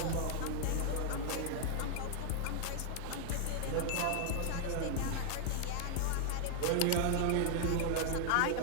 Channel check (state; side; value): different; both; correlation 0.00